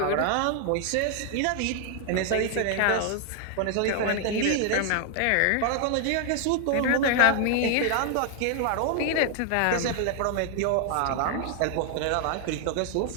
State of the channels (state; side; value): different; both; correlation 0.00